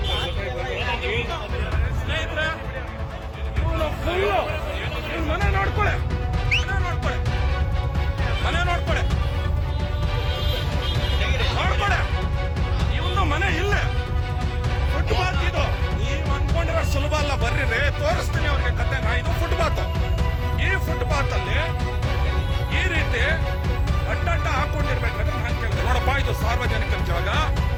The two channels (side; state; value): both; identical; correlation 1.00